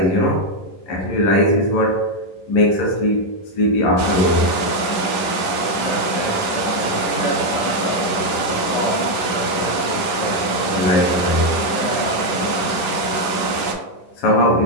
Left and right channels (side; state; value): right; late; 10 ms